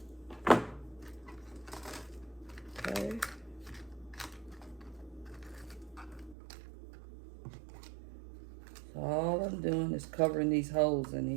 Okay. So all I'm doing is covering these holes in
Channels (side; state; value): left; drops out; at 6.4 s